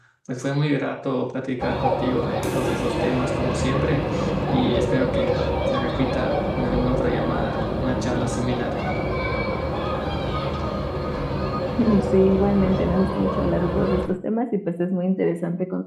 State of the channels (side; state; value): both; identical; correlation 1.00